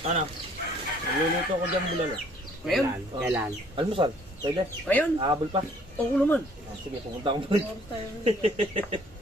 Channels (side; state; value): both; normal; correlation 0.59